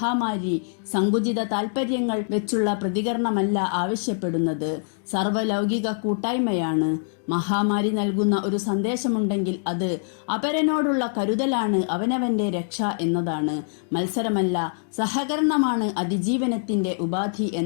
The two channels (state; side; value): silent; right; digital silence